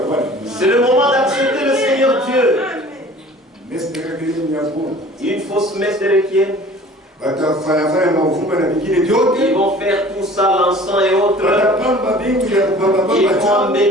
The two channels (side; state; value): both; normal; correlation 0.47